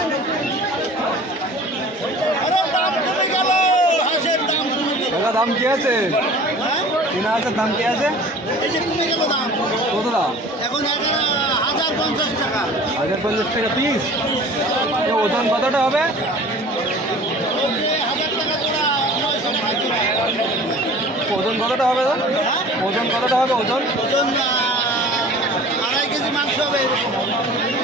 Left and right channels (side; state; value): both; normal; correlation 0.44